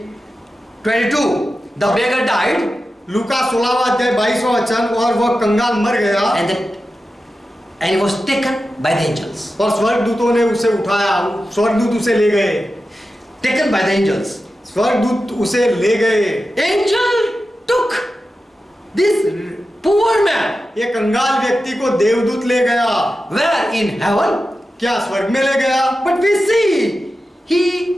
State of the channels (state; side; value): normal; both; correlation 0.92